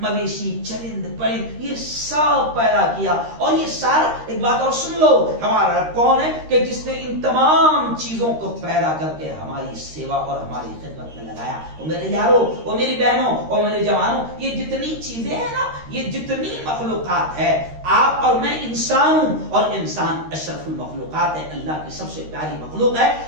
مویشی، چرند پرند یہ سب پیدا کیا، اور یہ سارا ایک بات اور سن لو، ہمارا رب کون ہے کہ جس نے ان تمام چیزوں کو پیدا کر کے ہماری سیوا اور ہماری خدمت میں لگایا۔ اور میرے یارو، اور میری بہنوں، اور میرے جوانوں، یہ جتنی چیزیں ہیں نا، یہ جتنی مخلوقات ہے، آپ اور میں انسان ہوں، اور انسان اشرف المخلوقات ہے، اللہ کی سب سے پیاری مخلوق ہے۔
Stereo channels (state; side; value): late; left; 13 ms